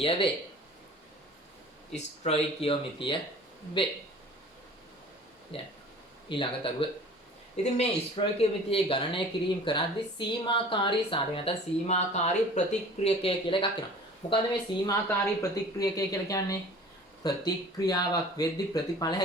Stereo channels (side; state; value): both; normal; correlation 0.45